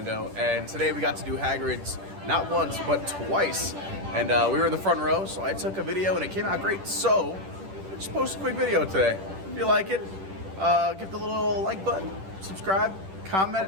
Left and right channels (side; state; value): left; late; 10 ms